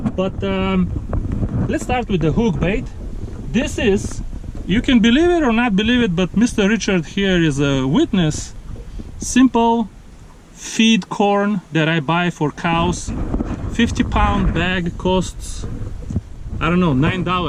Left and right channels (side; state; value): both; identical; correlation 1.00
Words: But let's start with the hook bait. This is, you can believe it or not believe it, but Mr. Richard here is a witness. Simple feed corn that I buy for cows. 50-pound bag costs, I don't know,